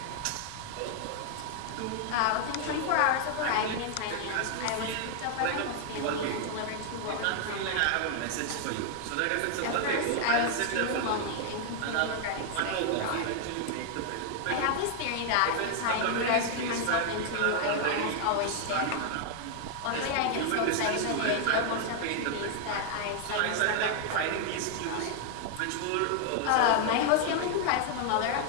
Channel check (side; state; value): both; different; correlation 0.00